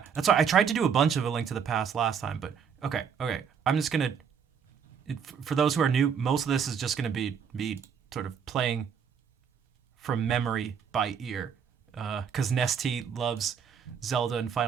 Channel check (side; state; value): left; quieter; 7.2 dB